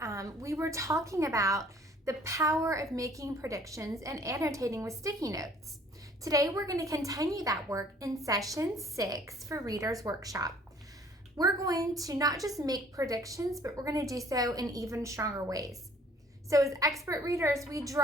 we were talking about the power of making predictions and annotating with sticky notes. Today we're going to continue that work in session 6 for Readers Workshop. We're going to not just make predictions, but we're going to do so in even stronger ways. So as expert readers, we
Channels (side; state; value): both; normal; correlation 0.56